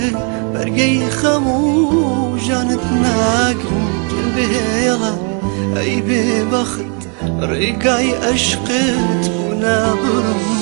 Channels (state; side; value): quieter; left; 38.5 dB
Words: برقي خمو جانت ناقرم جنبيلا اي ببخت رقاي اشقت ونابرم